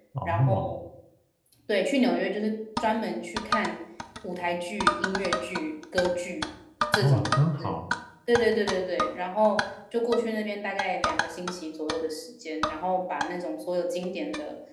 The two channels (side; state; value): both; identical; correlation 1.00